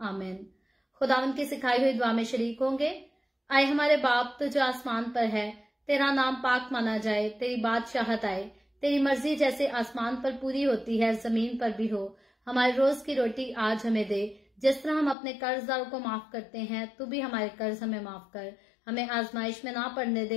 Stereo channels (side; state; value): right; drops out; at 15.2 s